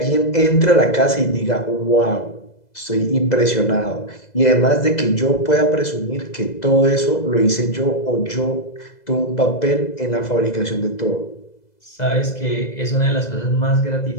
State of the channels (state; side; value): late; right; 2.0 ms